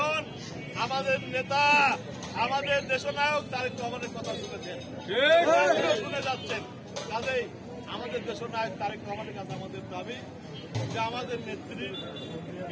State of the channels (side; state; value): both; identical; correlation 1.00